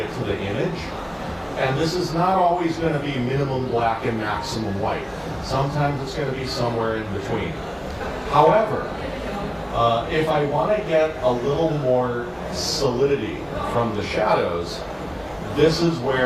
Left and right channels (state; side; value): identical; both; correlation 1.00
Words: to the image. And this is not always going to be minimum black and maximum white. Sometimes it's going to be somewhere in between. However, if I want to get a little more solidity from the shadows, this is